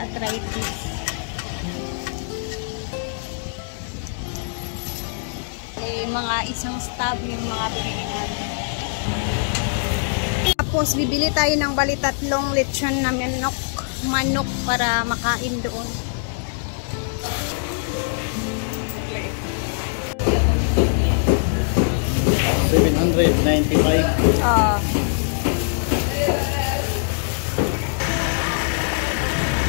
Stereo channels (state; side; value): silent; right; digital silence